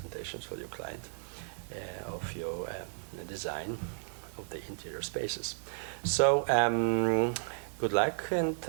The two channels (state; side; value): silent; left; digital silence